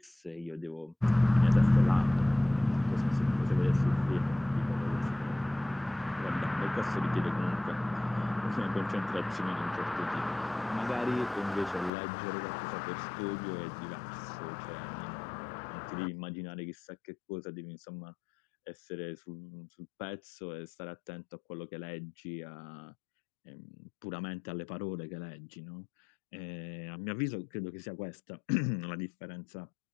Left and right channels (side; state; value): right; drops out; at 11.9 s